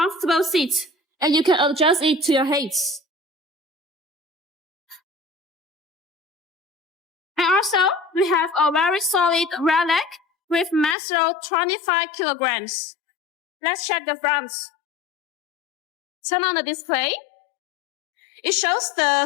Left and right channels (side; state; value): right; drops out; at 11.0 s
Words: seat, and you can adjust it to your height. And also we have a very solid rear leg with mass load 25 kilograms. Let's check the front. Turn on the display. It shows the